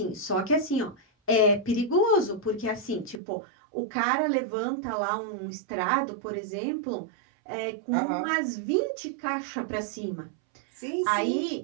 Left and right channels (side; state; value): left; drops out; at 3.2 s